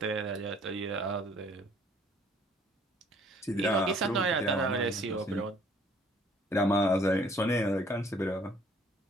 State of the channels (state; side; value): normal; both; correlation 0.59